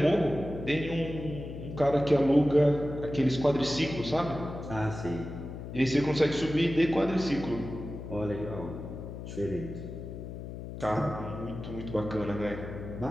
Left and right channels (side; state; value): left; noise; hum, 9 dB below the sound